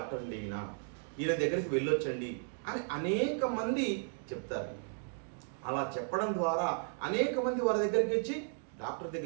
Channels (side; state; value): left; silent; 55 dB below the other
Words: అండి ఈయన దగ్గరికి వెళ్ళొచ్చండి అని అనేక మంది చెప్తారు. అలా చెప్పడం ద్వారా అనేక మంది వారి దగ్గరికి వచ్చి డాక్టర్